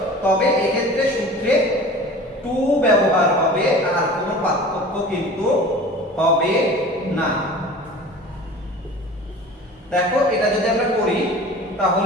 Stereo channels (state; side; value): normal; both; correlation 0.40